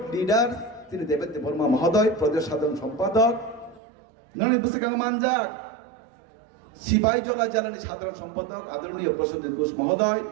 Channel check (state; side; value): drops out; left; at 3.8 s